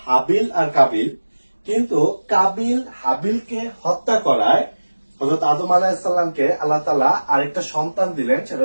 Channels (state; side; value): inverted; both; correlation -1.00